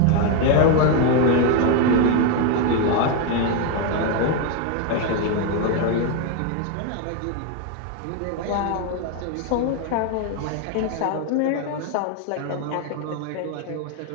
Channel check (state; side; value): different; both; correlation 0.01